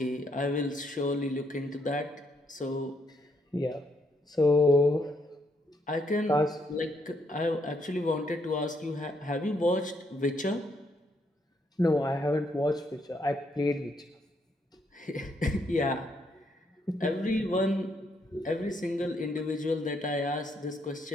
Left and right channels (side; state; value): both; normal; correlation 0.74